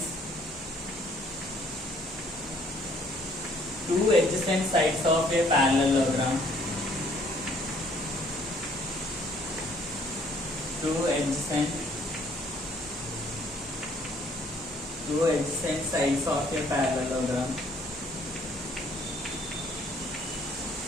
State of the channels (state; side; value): normal; both; correlation 0.62